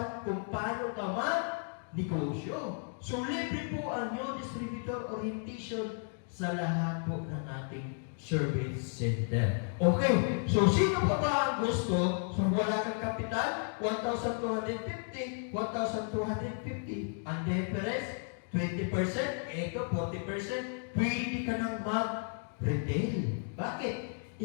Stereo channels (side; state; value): right; silent; 55 dB below the other